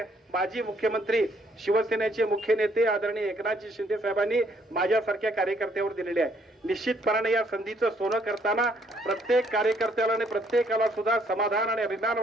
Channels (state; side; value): normal; both; correlation 0.67